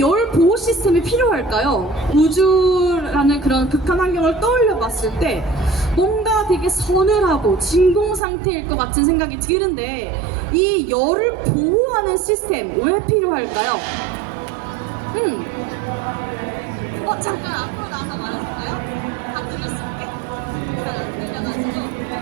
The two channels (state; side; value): drops out; left; at 8.2 s